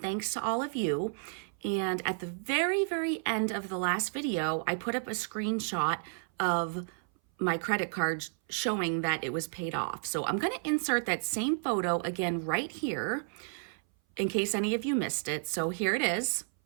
thanks to all of you. And at the very end of the last video, I put up a screenshot of my credit card showing that it was paid off. So I'm going to insert that same photo again right here in case any of you missed it. So here it is.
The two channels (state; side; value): silent; left; 57 dB below the other